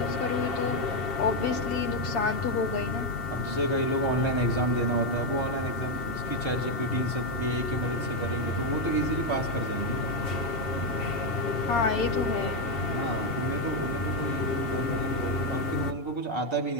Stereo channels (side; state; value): right; late; 2.7 ms